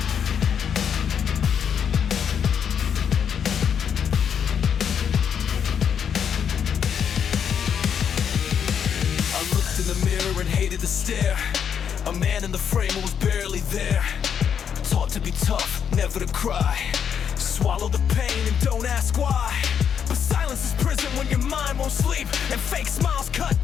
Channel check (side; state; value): right; quieter; 7.8 dB